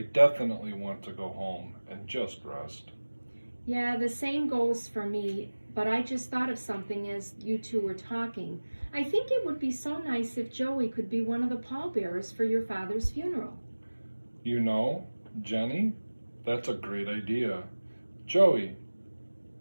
definitely want to go home and just rest. Yeah, the same goes for me, but I just thought of something as you two were talking. I think it would be so nice if Joey could be one of the pallbearers for your father's funeral. You know, Jenny, that's a great idea. Joey,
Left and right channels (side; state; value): both; inverted; correlation -1.00